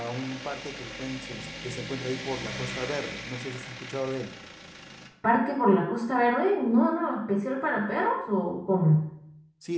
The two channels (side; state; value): both; identical; correlation 1.00